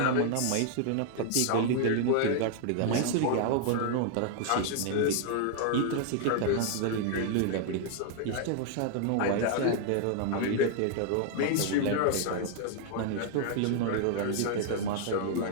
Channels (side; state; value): both; different; correlation 0.00